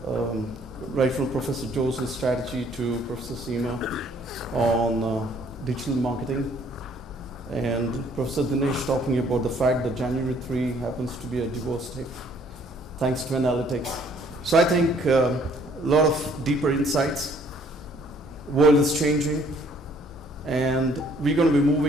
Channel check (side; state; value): both; normal; correlation 0.61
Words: right from Professor Jose's strategy to Professor Seema on digital marketing, and Professor Dinesh talking about the fact that January 3 happens to be a divorce day, thanks to analytics. So I think a lot of deeper insights. World is changing. And we're going to be